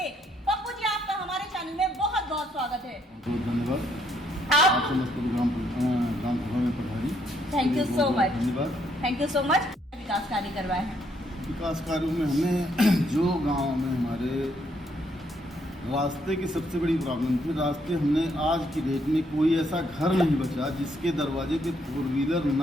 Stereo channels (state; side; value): normal; both; correlation 0.72